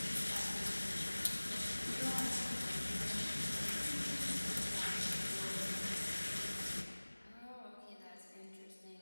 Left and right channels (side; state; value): both; inverted; correlation -1.00